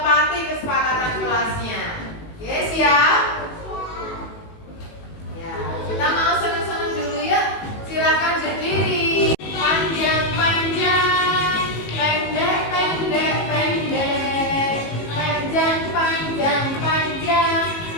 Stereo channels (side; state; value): right; late; 19 ms